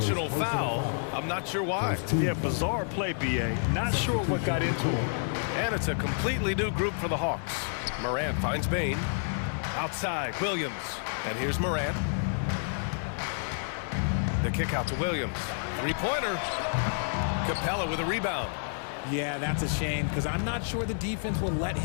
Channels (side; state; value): right; silent; digital silence